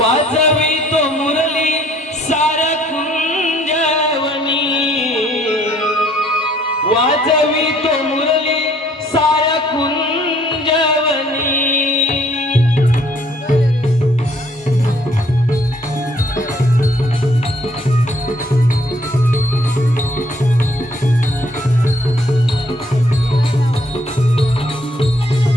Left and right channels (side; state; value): both; normal; correlation 0.62